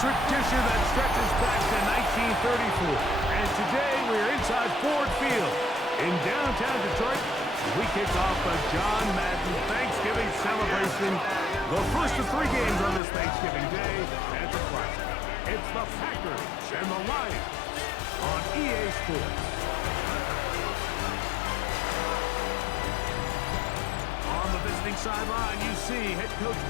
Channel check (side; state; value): right; drops out; at 13.0 s